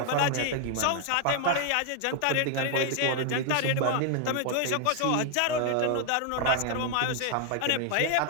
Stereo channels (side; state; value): both; different; correlation 0.00